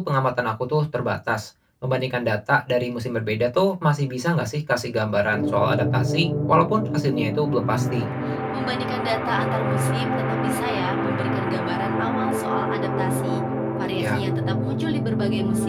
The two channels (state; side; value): identical; both; correlation 1.00